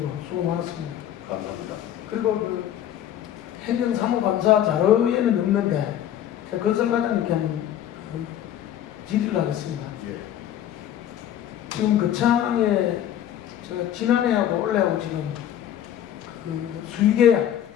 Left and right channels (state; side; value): quieter; right; 10.9 dB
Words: 수고 많았습니다. 감사합니다. 그리고 행정사무감사 자료에는 없는데 제가 건설과장님께 한번 질의를 하겠습니다. 지금 거창에 제가 지난해하고 올해하고 지금 수의계약